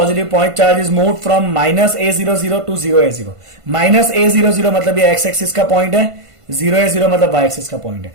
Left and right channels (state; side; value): late; left; 1.5 ms